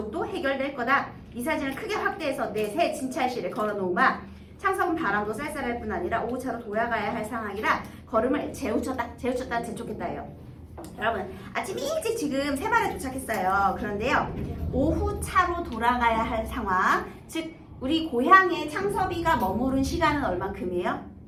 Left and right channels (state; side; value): identical; both; correlation 1.00